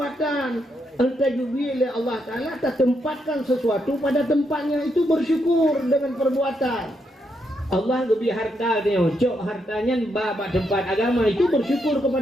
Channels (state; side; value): normal; both; correlation 0.79